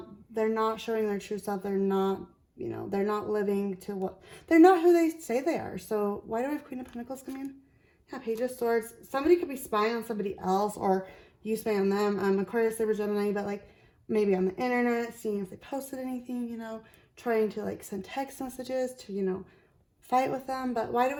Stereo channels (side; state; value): both; identical; correlation 1.00